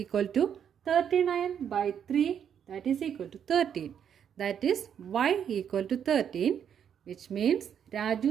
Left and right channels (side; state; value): left; quieter; 8.5 dB